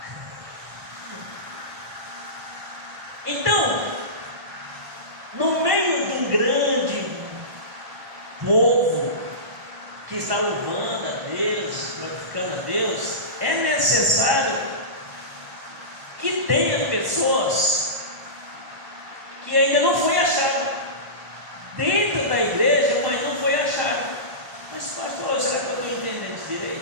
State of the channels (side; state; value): left; late; 1.1 ms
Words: Então, no meio de um grande povo que está louvando a Deus, glorificando a Deus, é necessário que tenha pessoas que ainda não foi achado dentro da igreja, mas não foi achado. Mas pastor, será que eu estou entendendo isso